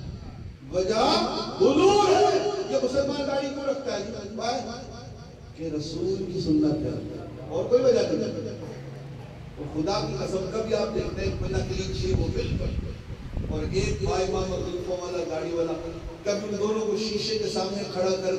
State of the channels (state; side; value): identical; both; correlation 1.00